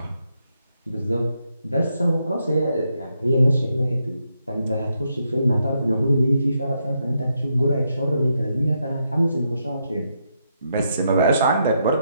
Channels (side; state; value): both; inverted; correlation -0.80